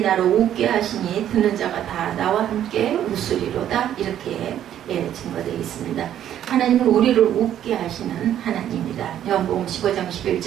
나로 웃게 하시니 듣는 자가 다 나와 함께 웃으리로다. 이렇게 증거되어 있습니다. 하나님은 우리를 웃게 하시는 하나님입니다. 요한복음 15장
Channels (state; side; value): quieter; left; 10.9 dB